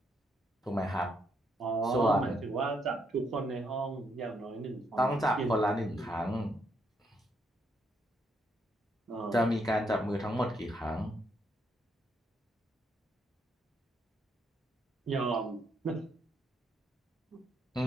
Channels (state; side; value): normal; both; correlation 0.75